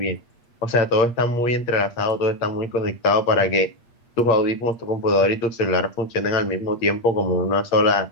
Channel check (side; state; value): right; late; 8.5 ms